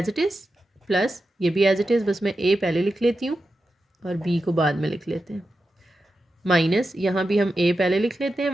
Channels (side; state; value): both; normal; correlation 0.90